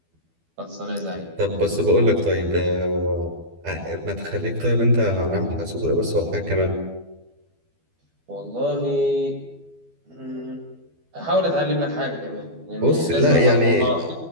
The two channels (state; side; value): late; left; 12 ms